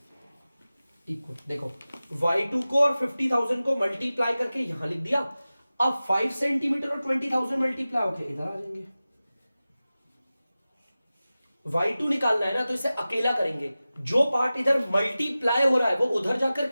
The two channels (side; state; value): both; inverted; correlation -0.96